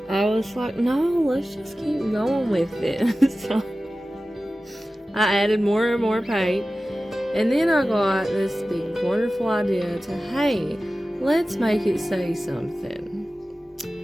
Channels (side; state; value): both; normal; correlation 0.95